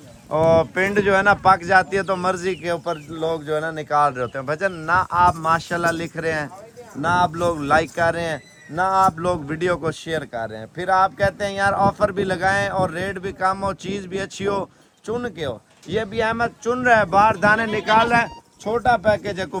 और पिंड जो है ना पक जाती है तो मर्जी के ऊपर लोग जो है ना निकाल रहे होते हैं। भजन ना आप माशाल्लाह लिख रहे हैं, ना आप लोग लाइक कर रहे हैं, ना आप लोग वीडियो को शेयर कर रहे हैं, फिर आप कहते हैं यार ऑफर भी लगाएं और रेट भी कम हो, चीज़ भी अच्छी हो, चुन के हो। ये भी अहमद चुन रहा है, बाहर दाने निकाल रहा है। छोटा पैकेज है,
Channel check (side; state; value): both; identical; correlation 1.00